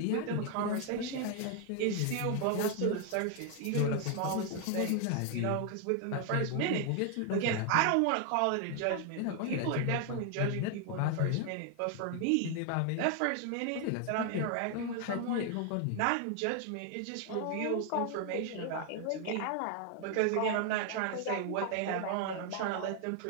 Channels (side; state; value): both; different; correlation 0.00